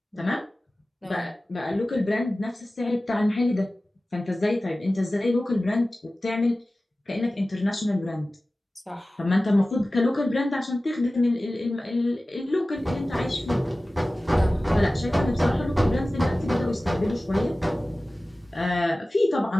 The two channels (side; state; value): both; normal; correlation 0.97